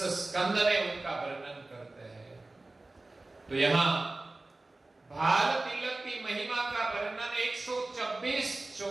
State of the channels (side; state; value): left; quieter; 3.0 dB